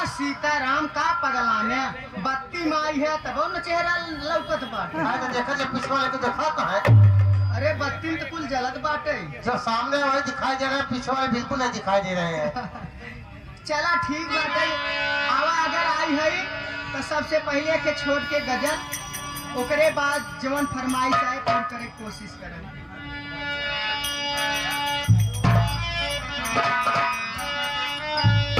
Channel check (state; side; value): identical; both; correlation 1.00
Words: सीताराम का पगला में बत्ती में आई है तब न चेहरा लौकत बाटे। तो देखा जो पीछे वाले को देखा तो है। अरे बत्ती में तो कुल जलत बाटे। जो सामने वही दिखाई दे रहे हैं, पीछे वाले बिल्कुल नहीं दिखाई दे रहे हैं। चला ठीक बाटे। आवा अगर आई है तो सबसे पहले के छोड़ के गजल, ओकरे बाद जवन फरमाइश आए पूरी करे कोशिश करें।